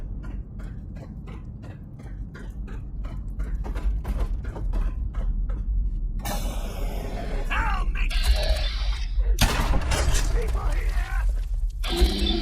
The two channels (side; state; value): both; identical; correlation 1.00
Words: Help me! People